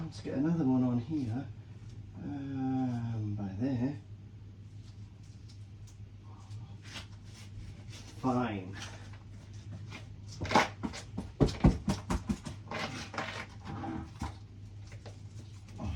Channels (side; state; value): both; identical; correlation 1.00